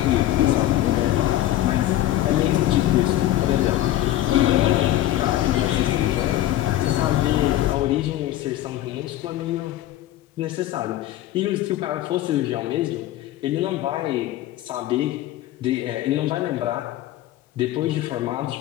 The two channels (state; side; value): quieter; right; 14.0 dB